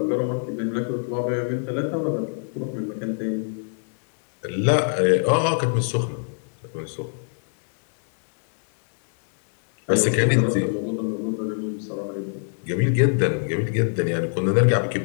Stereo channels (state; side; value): silent; right; 62 dB below the other